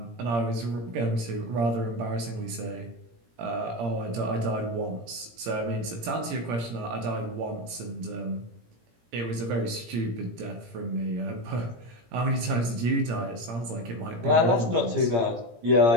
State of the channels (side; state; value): left; late; 17 ms